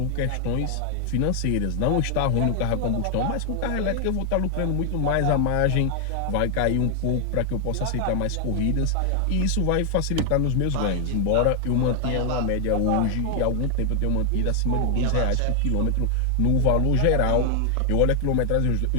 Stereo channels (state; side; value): different; both; correlation 0.00